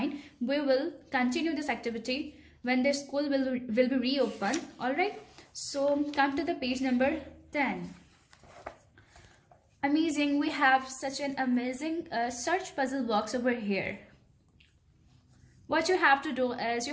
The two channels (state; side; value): identical; both; correlation 1.00